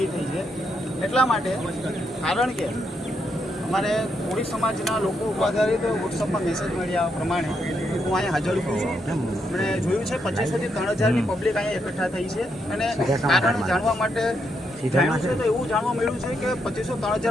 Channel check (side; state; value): both; normal; correlation 0.79